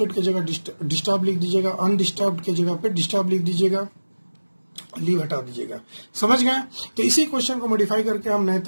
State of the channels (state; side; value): inverted; both; correlation -1.00